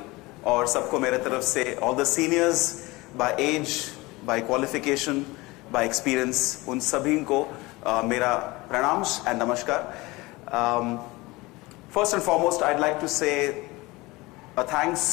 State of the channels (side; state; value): right; quieter; 22.1 dB